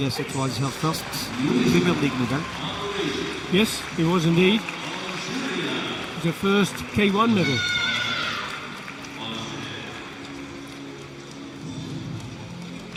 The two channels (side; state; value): both; identical; correlation 1.00